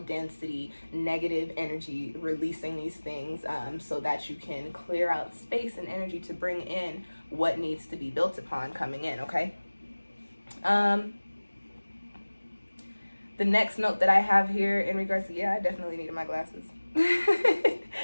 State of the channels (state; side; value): inverted; both; correlation -1.00